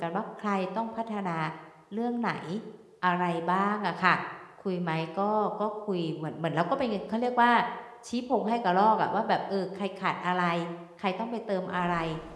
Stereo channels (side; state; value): both; identical; correlation 1.00